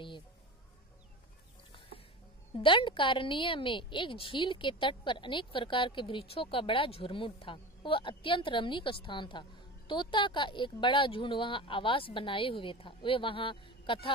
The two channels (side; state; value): both; normal; correlation 0.30